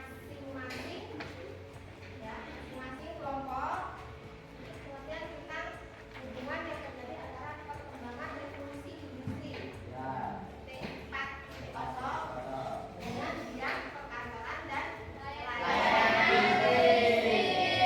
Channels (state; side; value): identical; both; correlation 1.00